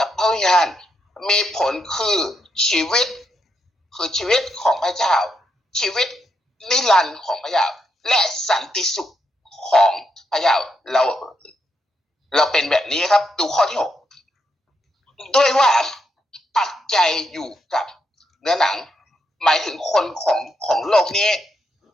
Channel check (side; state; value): both; normal; correlation 0.81